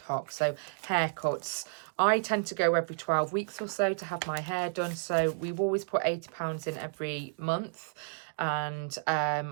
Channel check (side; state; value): left; silent; digital silence